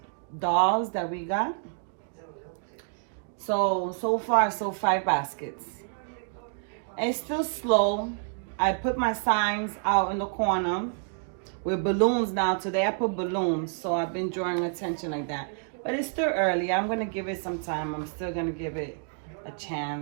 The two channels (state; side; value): silent; left; 59 dB below the other